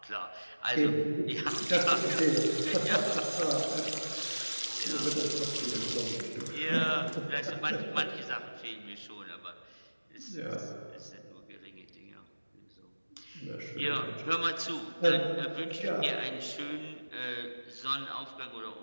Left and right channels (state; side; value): inverted; both; correlation -1.00